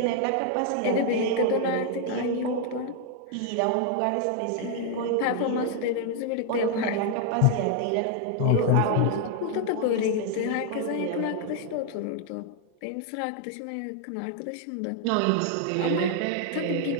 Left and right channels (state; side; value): different; both; correlation 0.00